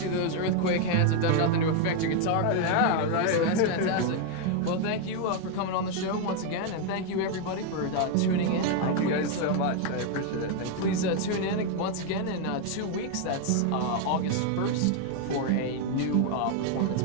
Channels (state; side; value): different; both; correlation 0.01